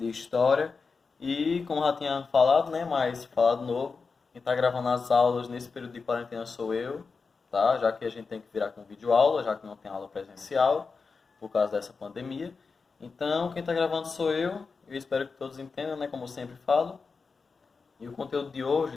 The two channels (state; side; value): quieter; right; 4.7 dB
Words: História. E, como já tinha falado, né, mas falado novo, quem tá gravando as aulas nesse período de quarentena sou eu, tá? Já que a gente tem que virar com videoaula, já que não tem aula presencial, por causa dessa pandemia. Então, quem tá gravando sou eu espero que todos entendam, né, como eu sempre falo. E o conteúdo de